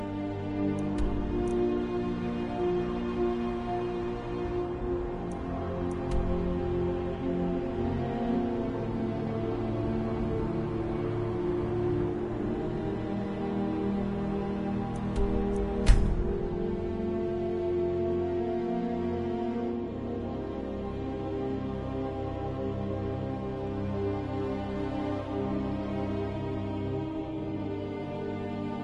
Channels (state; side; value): identical; both; correlation 1.00